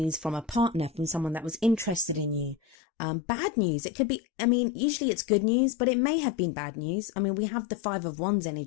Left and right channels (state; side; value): drops out; right; at 2.8 s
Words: from a partner, from someone that was interested in you. Bad news. It could be, usually it's good news, but it may have been bad news. We have the 5 of Wands